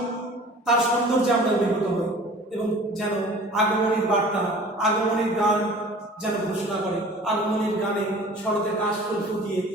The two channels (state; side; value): normal; both; correlation 0.45